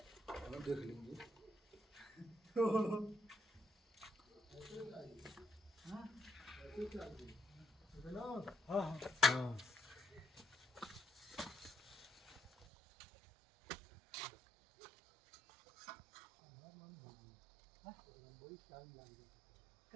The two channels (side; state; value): left; drops out; at 12.7 s